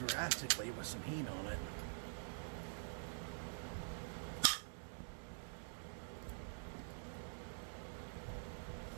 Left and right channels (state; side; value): silent; left; digital silence